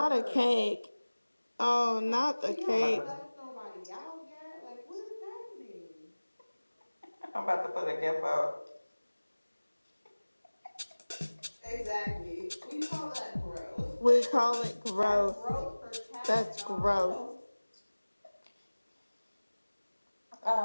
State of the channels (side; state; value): both; inverted; correlation -1.00